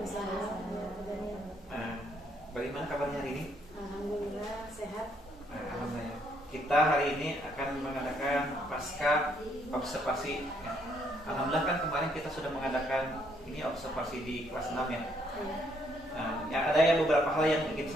Bagaimana kabarnya hari ini? Alhamdulillah sehat. Alhamdulillah. Kita hari ini akan mengadakan pasca observasi. Alhamdulillah kan kemarin kita sudah mengadakan ini observasi di kelas 6 ya. Ada beberapa hal yang ingin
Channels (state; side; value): normal; both; correlation 0.71